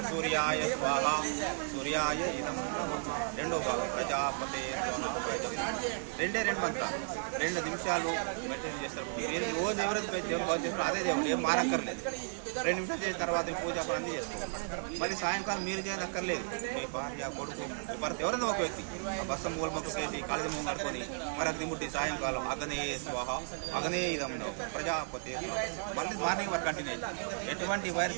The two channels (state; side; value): silent; left; digital silence